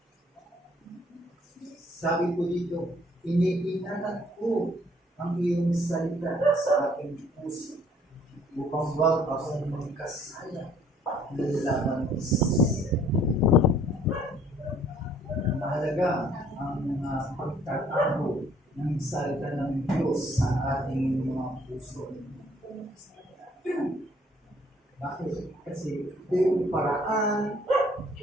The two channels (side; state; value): both; normal; correlation 0.60